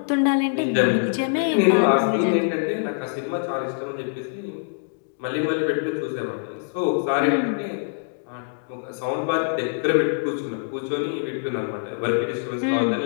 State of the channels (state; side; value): silent; right; digital silence